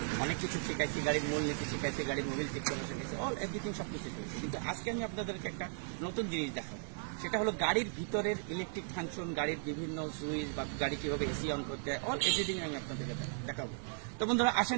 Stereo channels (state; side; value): silent; left; digital silence